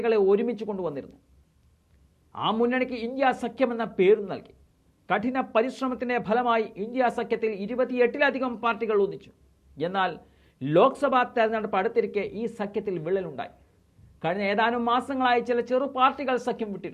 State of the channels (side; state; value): both; identical; correlation 1.00